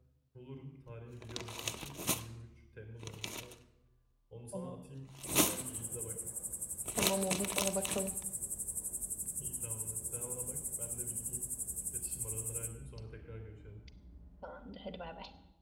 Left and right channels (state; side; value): identical; both; correlation 1.00